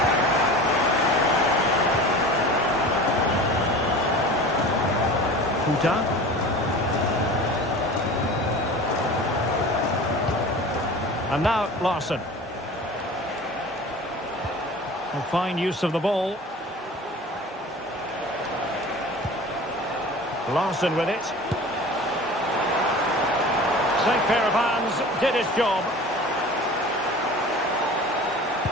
And now Larsson. A fine use of the ball. Larsson with it. Safe pair of hands, did his job.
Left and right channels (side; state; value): both; normal; correlation 0.38